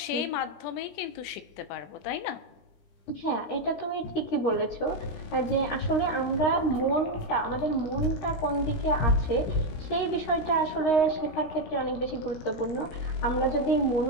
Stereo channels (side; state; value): right; late; 16 ms